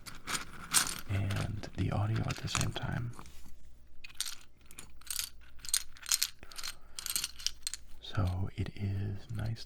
and the audio at the same time. So it is nice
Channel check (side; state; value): both; identical; correlation 1.00